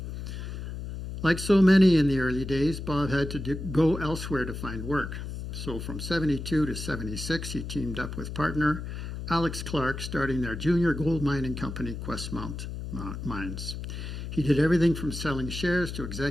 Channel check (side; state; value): left; noise; hum, 7 dB below the sound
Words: Like so many in the early days, Bob had to go elsewhere to find work. So from 72 to 76, he teamed up with partner Alex Clark, starting their junior gold mining company, Questmount Mines. He did everything from selling shares to